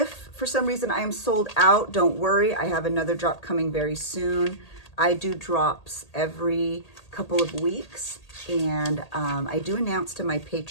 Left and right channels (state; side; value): late; right; 1.8 ms